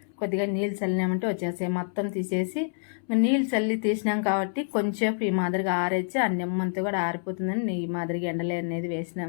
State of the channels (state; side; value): silent; right; 60 dB below the other